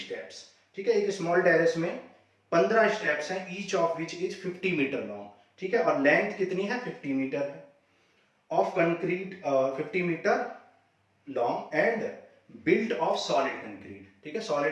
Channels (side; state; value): both; identical; correlation 1.00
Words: ठीक है, एक स्मॉल टेरेस में 15 स्टेप्स हैं, each of which is 50 metre long. ठीक है, और लेंथ कितनी है 50 मीटर है, of concrete 50 metre long and built of solid concrete. ठीक है,